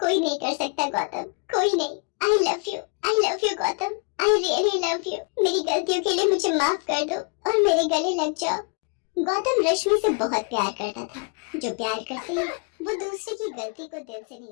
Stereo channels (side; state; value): right; quieter; 35.9 dB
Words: नहीं कर सकता गौतम, कोई नहीं। I love you Gautam, I really love you. मेरी गलतियों के लिए मुझे माफ कर दो और मेरे गले लग जाओ। गौतम रश्मि से बहुत प्यार करता था। जो प्यार करते हैं वो दूसरे की गलती को दिल से नहीं